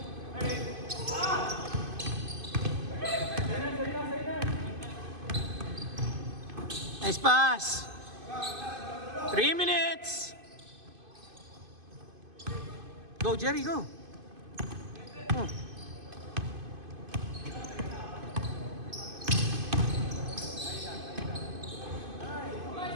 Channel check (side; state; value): left; late; 2.5 ms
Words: Nice pass. 3 minutes. Go, Jerry, go. Oh.